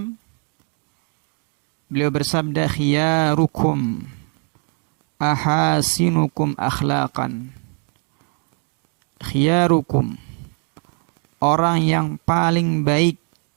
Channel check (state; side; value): quieter; left; 37.7 dB